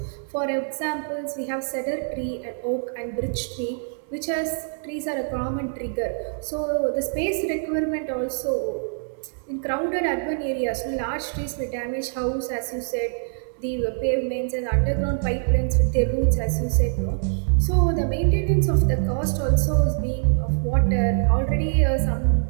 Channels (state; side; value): silent; left; digital silence